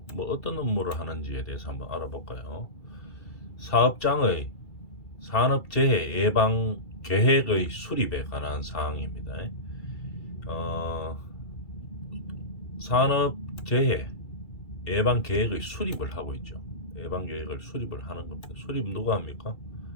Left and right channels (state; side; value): late; right; 2.3 ms